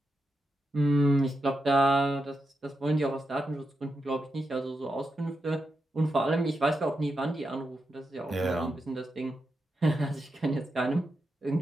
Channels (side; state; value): both; normal; correlation 0.86